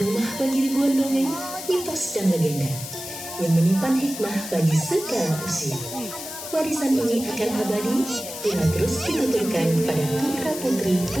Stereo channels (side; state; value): left; noise; hiss, 9 dB below the sound